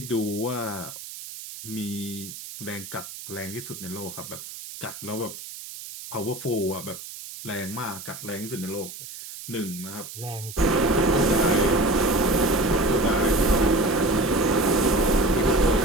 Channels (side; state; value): right; noise; hiss, 12 dB below the sound